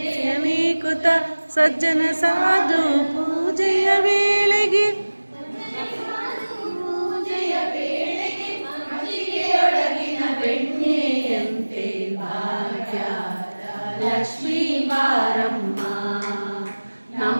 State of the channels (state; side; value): inverted; both; correlation -1.00